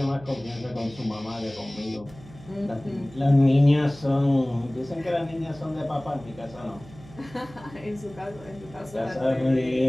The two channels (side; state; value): right; noise; hum, 20 dB below the sound